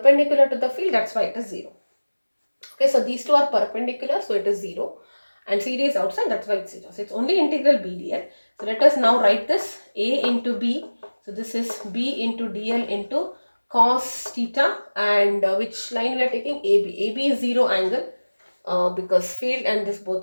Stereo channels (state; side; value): inverted; both; correlation -1.00